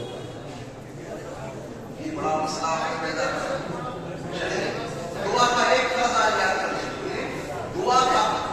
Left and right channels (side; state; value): both; identical; correlation 1.00